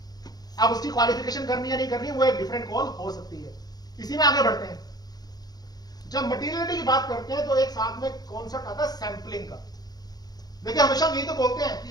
अब उसकी क्वालिफिकेशन करनी है नहीं करनी, वो एक डिफरेंट कॉल हो सकती है। इसी में आगे बढ़ते हैं। जब मटीरियलिटी की बात करते हैं तो एक साथ में कॉन्सेप्ट आता है सैंपलिंग का। देखिए हमेशा यही तो बोलते हैं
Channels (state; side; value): late; right; 0.19 ms